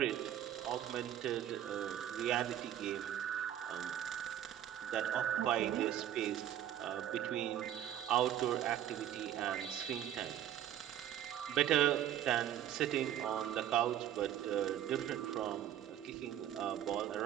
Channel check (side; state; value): left; quieter; 11.2 dB